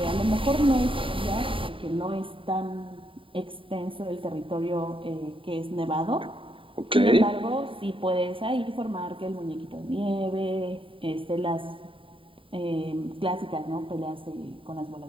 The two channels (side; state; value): left; late; 0.25 ms